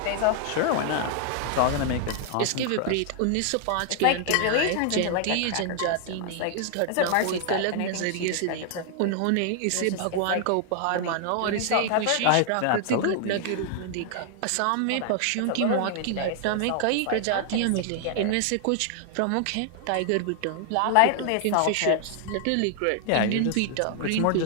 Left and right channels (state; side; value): different; both; correlation 0.00